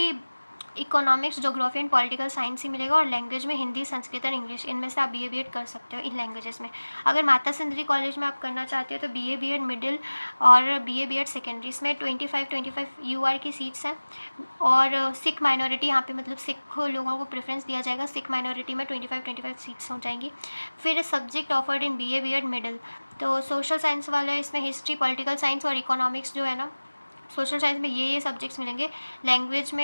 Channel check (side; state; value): both; inverted; correlation -1.00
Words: economics, geography and political science ही मिलेगा, और लैंग्वेज में हिंदी, संस्कृत और इंग्लिश, इनमें से आप BA-BEd कर सकते हो इन लैंग्वेजेस में। अगर माता सुंदरी कॉलेज में आप करना चाहते हो तो BA-BEd मिडिल और BA-BEd सेकेंडरी, इसमें 25 UR की सीट्स हैं। और सिख माइनॉरिटी यहाँ पे मतलब सिख लोगों को प्रेफरेंस दिया जाएगा, सिख माइनॉरिटी में 25 सीट्स हो जाएंगी। फिर सब्जेक्ट ऑफर्ड इन BA-BEd मिडिल, तो सोशल साइंस वाले इसमें हिस्ट्री, पॉलिटिकल साइंस और इकोनॉमिक्स जो है ना, सोशल साइंस में ये सब्जेक्ट्स मिलेंगे। लैंग्वेज